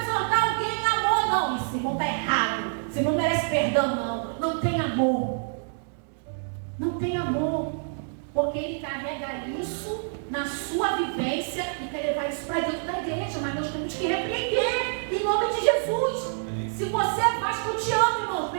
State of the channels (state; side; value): silent; left; 60 dB below the other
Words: exortar alguém em amor. Não, esse irmão está errado, esse irmão não merece perdão, não tem amor. Não tem amor, porque ele carrega isso na sua vivência e quer levar isso para dentro da igreja, mas nós temos que repreender em nome de Jesus. Se você é Vasco, eu te amo, irmão,